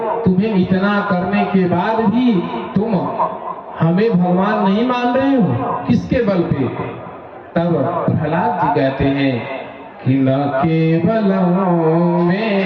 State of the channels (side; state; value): both; identical; correlation 1.00